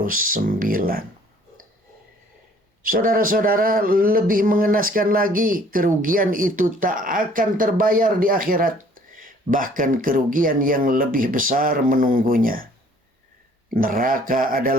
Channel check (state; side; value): normal; both; correlation 0.57